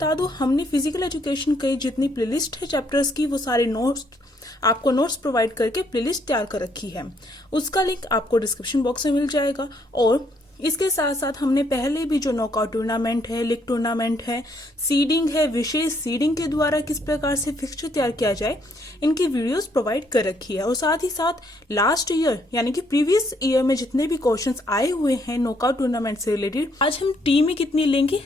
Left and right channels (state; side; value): normal; both; correlation 0.70